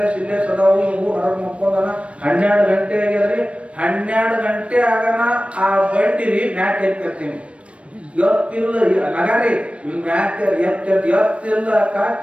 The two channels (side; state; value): left; late; 0.062 ms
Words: ಸಿಲ್ಲೇ ಸದಾವು. ಊರ್ ಹೊರಗೆ ಮುಕ್ಕೊಂಡನ 12 ಗಂಟೆ ಆಗ್ಯದ್ರಿ. 12 ಗಂಟೆ ಆಗನ ಆ ಬಂಡಿರಿ ಮ್ಯಾಕ್ ಎತ್ತಿರ್ತೀನಿ. ಎತ್ತಿಲ್ಲ ನಗಾರಿ ಮ್ಯಾಕ್ ಎತ್ತಿಲ್ಲ